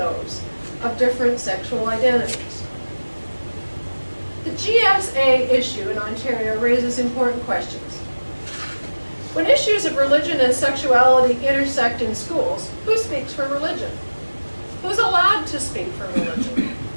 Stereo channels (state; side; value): inverted; both; correlation -1.00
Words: of different sexual identities. The GSA issue in Ontario raises important questions. When issues of religion and sexuality intersect in schools, who speaks for religion? Who's allowed to speak for religion?